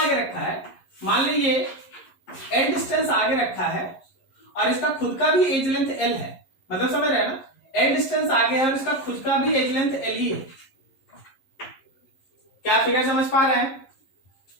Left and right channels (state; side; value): late; right; 11 ms